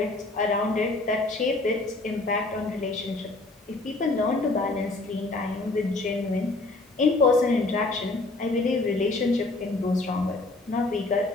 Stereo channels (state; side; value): quieter; right; 3.1 dB